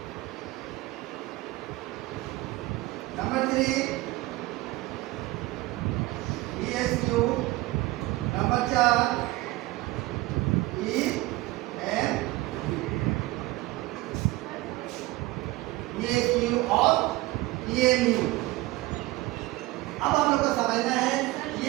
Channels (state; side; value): quieter; left; 19.3 dB